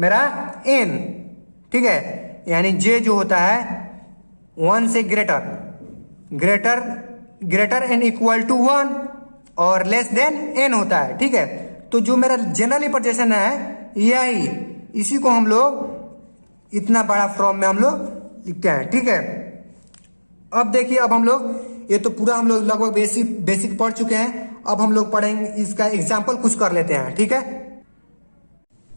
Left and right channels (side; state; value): both; inverted; correlation -1.00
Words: एन, ठीक है, यानी जे जो होता है 1 से ग्रेटर एंड इक्वल टू 1 और लेस देन एन होता है, ठीक है। तो जो मेरा जनरल रिप्रेजेंटेशन है यही, इसी को हम लोग इतना बड़ा फॉर्म में हम लोग लिखते हैं, ठीक है। अब देखिए, अब हम लोग ये तो पूरा हम लोग लगभग बेसिक पढ़ चुके हैं, अब हम लोग पढ़ेंगे इसका एग्जाम्पल कुछ कर लेते हैं, ठीक है।